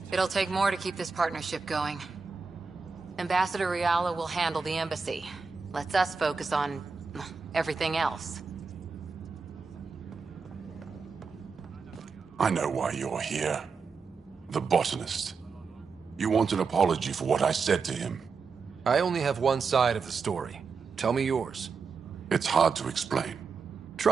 It'll take more to keep this partnership going. Ambassador Riala will handle the embassy. Lets us focus on everything else. I know why you're here. The botanist. You want an apology for what I said to him. I only have one side of the story. Tell me yours. It's hard to explain.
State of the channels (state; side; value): quieter; left; 5.0 dB